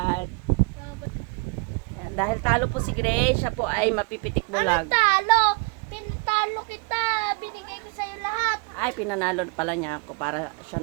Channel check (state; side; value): quieter; left; 32.9 dB